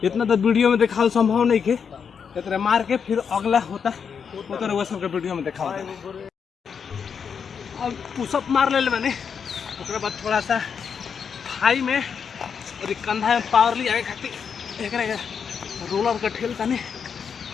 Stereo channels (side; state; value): right; quieter; 6.7 dB